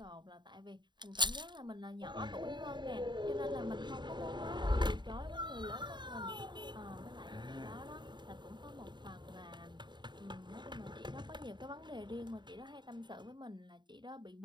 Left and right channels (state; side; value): late; left; 0.22 ms